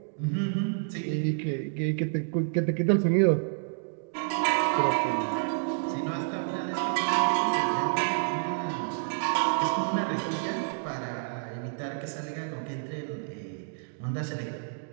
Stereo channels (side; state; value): left; silent; digital silence